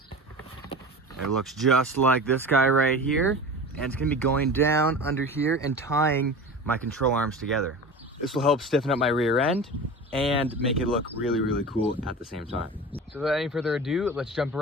It looks just like this guy right here, and it's going to be going down under here and tying my control arms together. This will help stiffen up my rear end and make it look really, really cool at the same time. So without any further ado, let's jump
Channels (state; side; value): normal; both; correlation 0.33